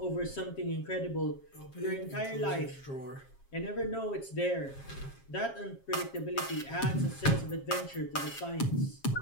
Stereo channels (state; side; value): late; right; 7.4 ms